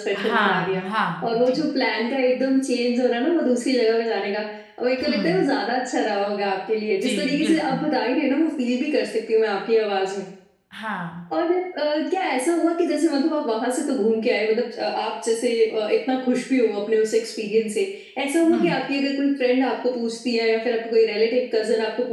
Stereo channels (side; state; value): both; identical; correlation 1.00